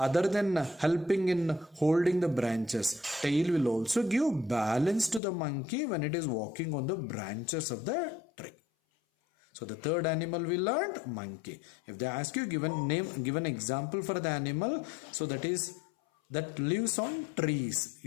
helping in holding the branches, tail will also give balance to the monkey when it is walking on the branches of the tree. So the third animal we learned, monkey. If they ask you, give an example for the animal, so that lives on trees,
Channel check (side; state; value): right; drops out; at 5.2 s